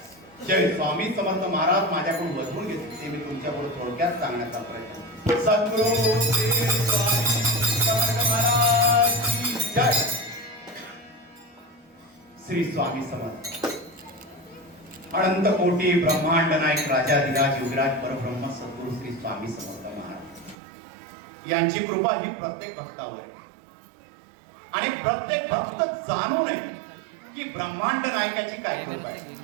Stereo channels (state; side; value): drops out; left; at 20.6 s